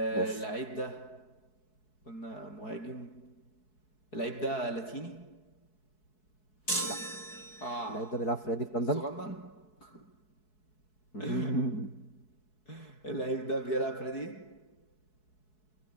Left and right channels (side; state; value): right; late; 4.7 ms